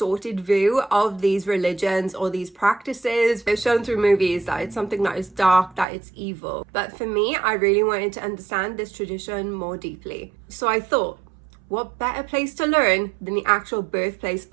view of these religions or these practices. They're shown through movies that it's something that is dark, that it's evil. But for me, I really wanted to understand this tradition more deeply. So I thought, what better place to learn than the actual birthplace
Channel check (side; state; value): left; drops out; at 5.9 s